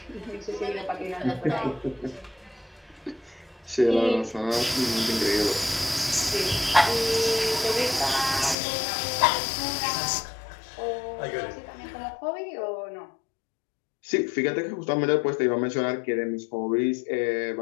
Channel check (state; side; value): drops out; right; at 8.6 s